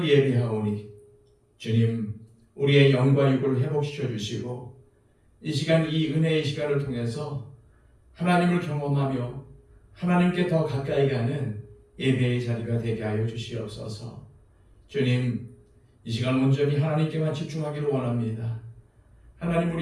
예배하오니 주님, 우리의 영과 육을 회복시켜 주시고 이 시간, 이 은혜의 시간을 통해서 하나님을 경험하며 하나님께 더 가까이 가는 예배의 자리가 되게 하여 주시옵소서. 주님, 이 시간 온전히 하나님께만 집중하기를 원합니다. 하나님,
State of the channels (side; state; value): both; identical; correlation 1.00